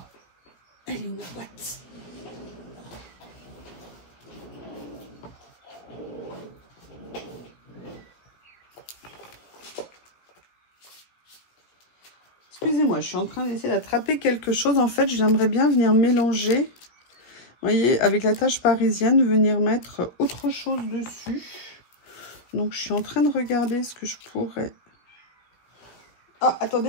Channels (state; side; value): late; right; 17 ms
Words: elle est où la boîte? Excusez-moi, je suis en train d'essayer d'attraper quelque chose. En fait, j'aimerais bien venir mélanger, vous voyez, avec la tache parisienne, venir mettre autre chose dessus. Donc, je suis en train de regarder ce que je pourrais... Ah, attendez,